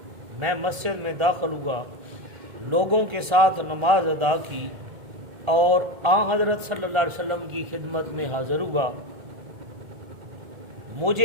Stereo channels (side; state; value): left; late; 1.4 ms